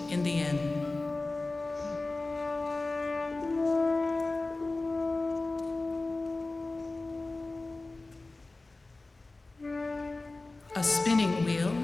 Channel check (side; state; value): right; quieter; 3.2 dB